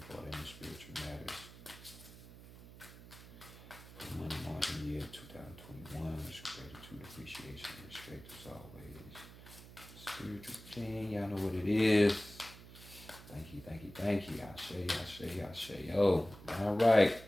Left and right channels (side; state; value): right; noise; hum, 17 dB below the sound